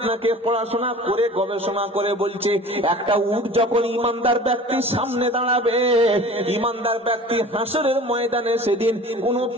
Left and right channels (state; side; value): normal; both; correlation 0.42